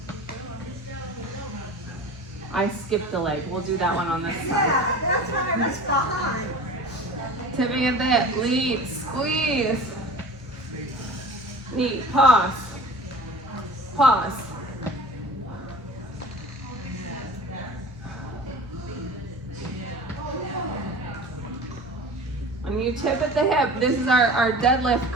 I skipped a leg. We'll do that one on this side. Yeah, that's what I was behind. Tipping at the hip, lead, squeeze. Knee, pause. Pause. you tip at the hip, this is our deadlift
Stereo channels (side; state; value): both; normal; correlation 0.38